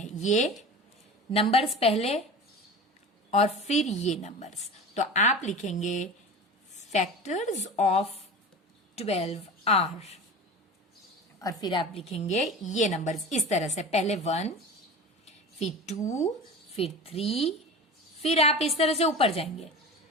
ये नंबर्स पहले और फिर ये नंबर्स। तो आप लिखेंगे फैक्टर्स ऑफ 12 आर, और फिर आप लिखेंगे ये नंबर्स इस तरह से, पहले 1 फिर 2 फिर 3, फिर आप इस तरह से ऊपर जाएंगे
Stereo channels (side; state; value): both; normal; correlation 0.33